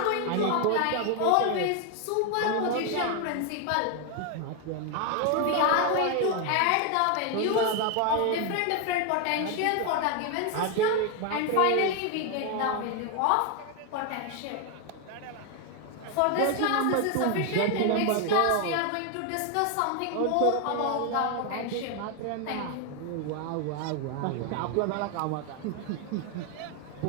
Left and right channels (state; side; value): different; both; correlation 0.01